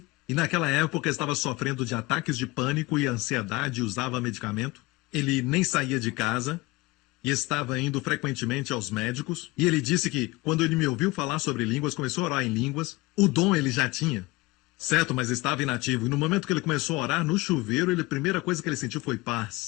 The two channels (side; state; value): right; quieter; 22.0 dB